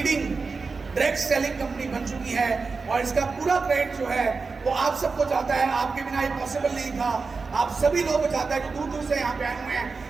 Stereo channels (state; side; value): quieter; left; 4.5 dB